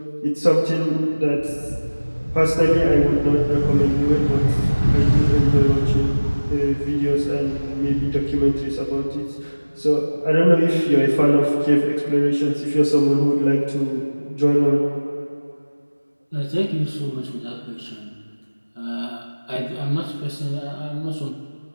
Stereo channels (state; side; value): inverted; both; correlation -1.00